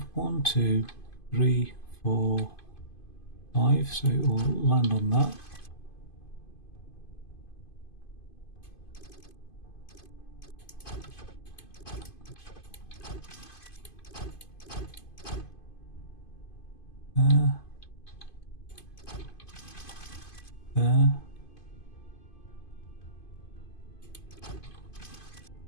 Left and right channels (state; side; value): late; right; 2.5 ms